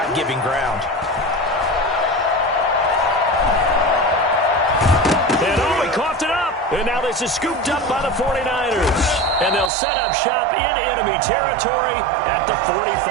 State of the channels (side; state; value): left; drops out; at 9.7 s